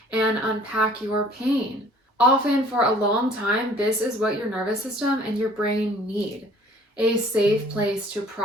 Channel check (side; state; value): both; normal; correlation 0.54